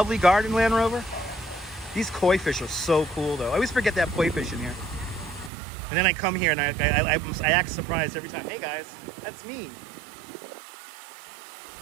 garden, Land Rover? These koi fish are so cool, though. I always forget that koi fish in here. And then I come here and I act surprised every time. Hey, guys, that's me.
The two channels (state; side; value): drops out; left; at 5.5 s